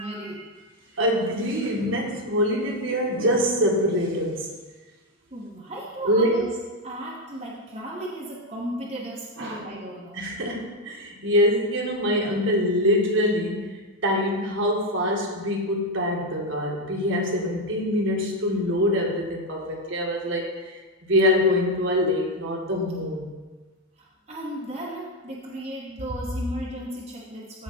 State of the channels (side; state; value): both; normal; correlation 0.06